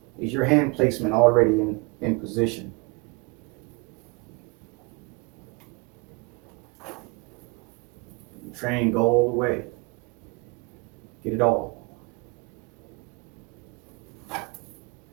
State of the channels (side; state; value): left; quieter; 29.0 dB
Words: is your hand placement already in position? You train, go all the way. Get it all.